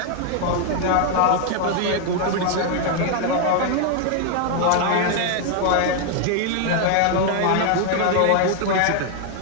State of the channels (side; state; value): both; different; correlation 0.00